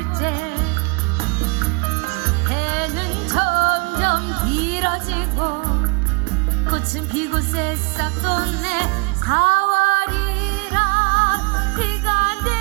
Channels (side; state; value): left; quieter; 31.0 dB